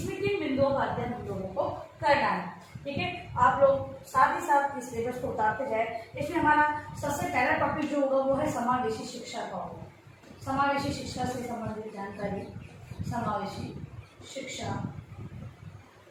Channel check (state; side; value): identical; both; correlation 1.00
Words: किन बिंदुओं का अध्ययन हम लोगों को करना है। ठीक है, आप लोग साथ ही साथ इस सिलेबस को उतारते जाए। इसमें हमारा सबसे पहला टॉपिक जो होगा वो है समावेशी शिक्षा का होगा। समावेशी शिक्षा से संबंधित जानकारी, समावेशी शिक्षा,